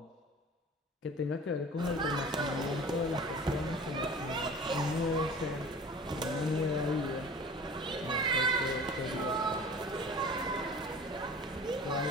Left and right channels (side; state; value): both; normal; correlation 0.42